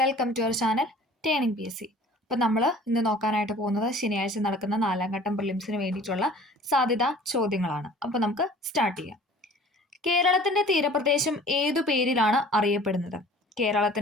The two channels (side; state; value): both; normal; correlation 0.48